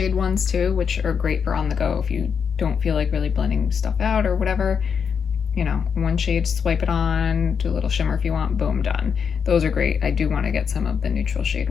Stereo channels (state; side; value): quieter; right; 6.7 dB